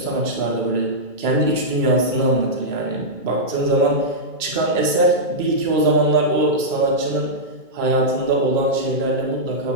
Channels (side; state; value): left; late; 2.3 ms